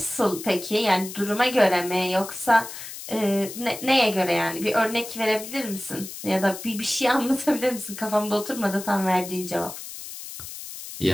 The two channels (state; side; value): noise; left; hiss, 11 dB below the sound